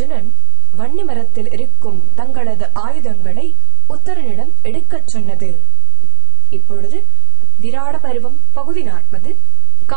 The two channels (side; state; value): left; quieter; 22.9 dB